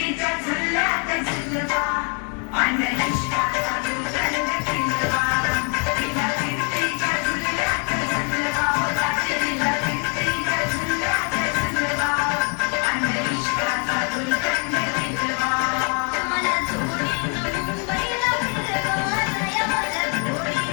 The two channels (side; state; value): right; quieter; 38.6 dB